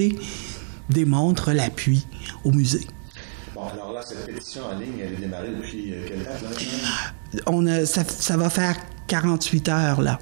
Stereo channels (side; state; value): left; silent; digital silence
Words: démontre l'appui au musée. Bon, alors là, cette pétition en ligne, elle est démarrée depuis quelle date, là? Ça va faire 48 heures, là,